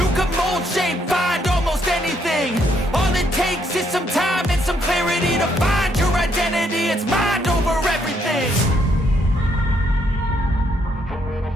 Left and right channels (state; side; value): normal; both; correlation 0.73